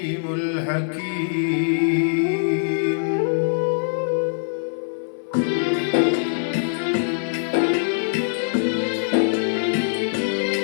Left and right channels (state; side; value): silent; right; 64 dB below the other